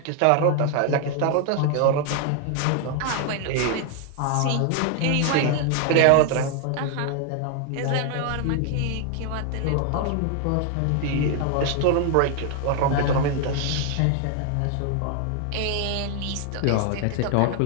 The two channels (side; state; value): both; different; correlation 0.00